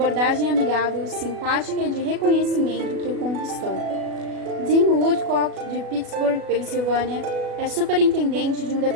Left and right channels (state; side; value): late; left; 37 ms